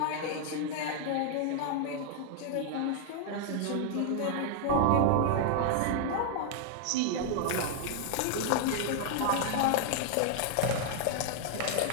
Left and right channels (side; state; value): both; different; correlation 0.00